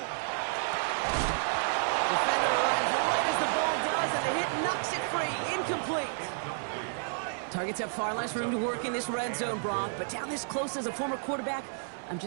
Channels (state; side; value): silent; left; 57 dB below the other